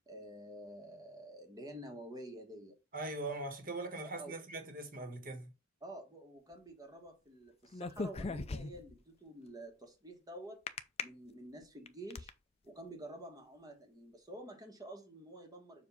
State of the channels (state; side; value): normal; both; correlation 0.31